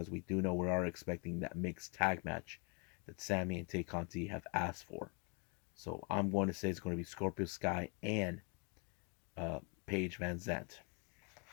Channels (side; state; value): right; quieter; 35.2 dB